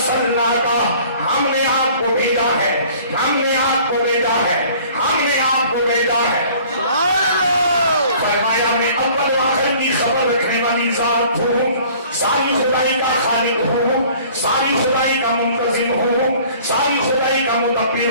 ہم نے آپ کو بھیجا ہے، ہم نے آپ کو بھیجا ہے، ہم نے آپ کو بھیجا ہے۔ فرمایا میں اول و آخر کی خبر رکھنے والی ذات ہوں، ساری خدائی کا خالق ہوں، ساری خدائی کا منتظم ہوں، ساری خدائی کا مدبر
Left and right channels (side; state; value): both; inverted; correlation -0.51